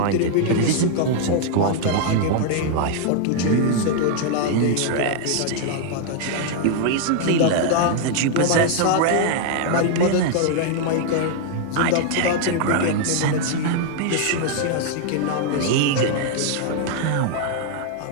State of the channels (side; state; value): both; different; correlation 0.00